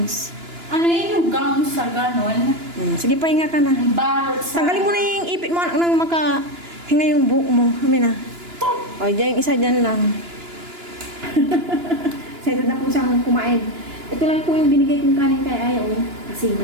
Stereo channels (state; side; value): late; left; 2.9 ms